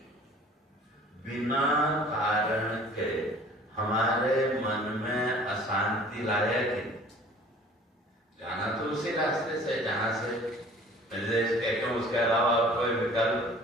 बिना कारण के हमारे मन में अशांति लाया कि जाना तो उसी रास्ते से जहां से निर्देश कहते हैं, उसके अलावा कोई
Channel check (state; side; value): normal; both; correlation 0.49